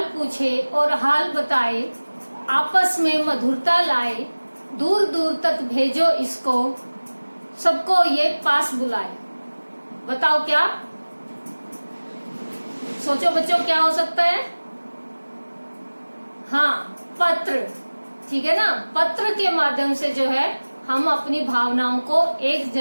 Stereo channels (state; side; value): inverted; both; correlation -1.00